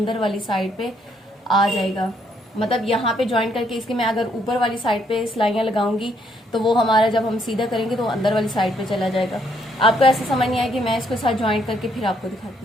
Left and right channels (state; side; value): normal; both; correlation 0.71